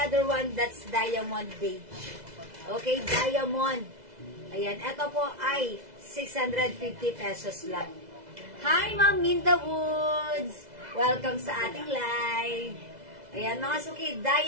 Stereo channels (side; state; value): left; late; 2.0 ms